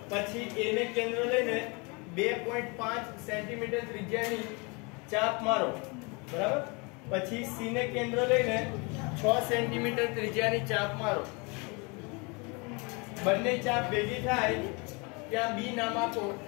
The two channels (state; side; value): quieter; right; 29.8 dB